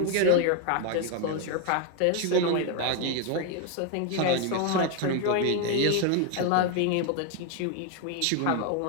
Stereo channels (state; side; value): different; both; correlation 0.01